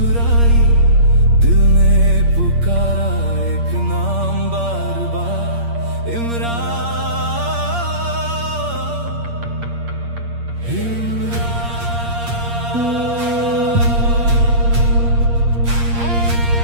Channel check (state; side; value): late; left; 8.6 ms